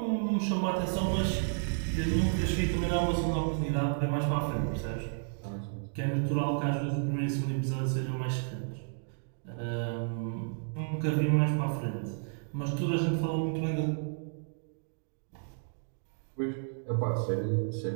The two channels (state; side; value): silent; left; digital silence